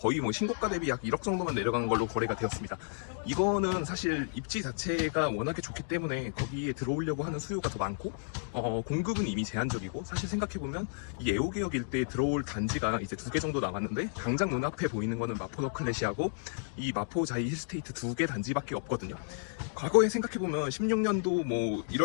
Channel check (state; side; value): silent; right; digital silence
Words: 뭐 신고가 대비 약 1억 정도만 내려간 걸로 거래가 되었습니다. 이거는 사실 입지 자체가 워낙에 좋기 때문에 거기에 들어오려고 하는 수요가 더 많고, 공급은 이미 제한적이고, 사실 생각해보면 이 애호개역 일대에 들어올 단지가 이제 2개 정도 남았는데, 당장 눈앞에 보이는 거는 마포 너클렛이하고 이 마포 자이 힐스테이트 2개 단지밖에 없거든요. 과거에 생각해보면 16년도 뭐